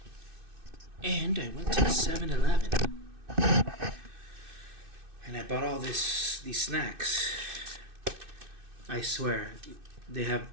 and I went to 7-Eleven and I bought all these snacks. I swear, they have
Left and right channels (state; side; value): late; left; 2.6 ms